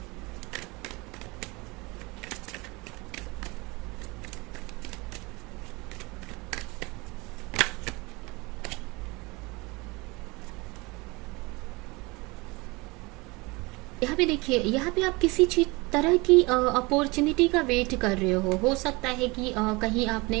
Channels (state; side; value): quieter; left; 25.1 dB